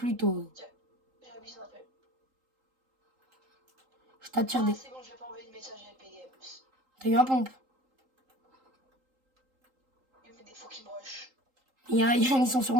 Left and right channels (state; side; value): late; left; 3.8 ms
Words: toi. J'abuse un peu. Je t'attire Ah, des... c'est bon, je vais pas envoyer de message à Epic Games. T'as eu un pompe. Il met des faux qui me rush. Ils sont sur